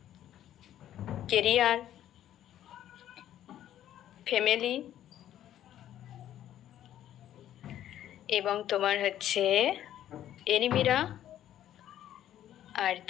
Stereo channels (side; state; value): right; quieter; 11.7 dB